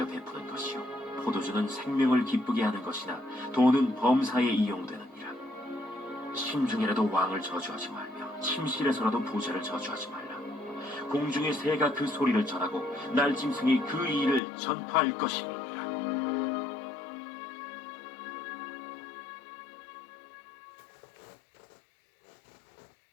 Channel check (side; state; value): right; drops out; at 14.4 s